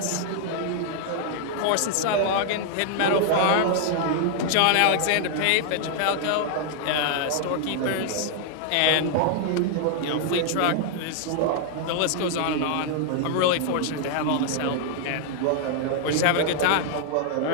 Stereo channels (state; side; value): different; both; correlation 0.00